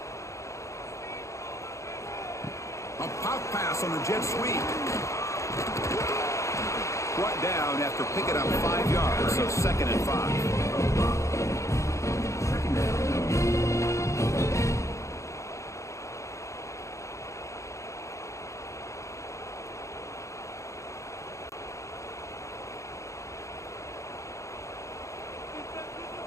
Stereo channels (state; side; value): late; right; 0.15 ms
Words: A pop pass on the jet sweep. Brought down after picking up 5 yards, so 2nd and 5. Second down.